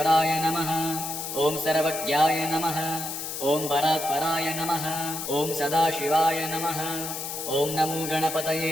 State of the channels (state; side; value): noise; left; hiss, 6 dB below the sound